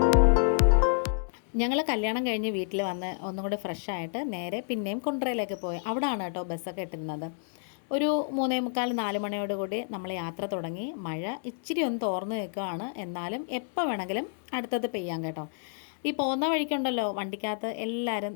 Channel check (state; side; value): silent; right; 58 dB below the other